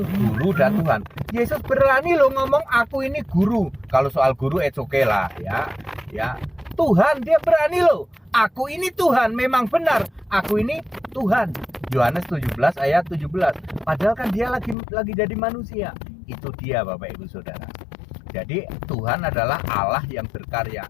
guru dan Tuhan. Yesus berani loh ngomong aku ini guru. Kalau soal guru it's okay lah, ya. Tuhan dia berani loh. Aku ini Tuhan, memang benar. Aku ini Tuhan. Yohanes 17 ayat 17. Padahal kan dia lagi jadi manusia. Itu dia Bapak Ibu Saudara. Jadi Tuhan adalah Allah yang berkarya.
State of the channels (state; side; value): drops out; right; at 14.8 s